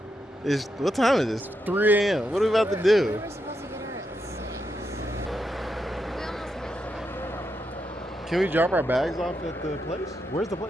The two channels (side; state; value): both; normal; correlation 0.83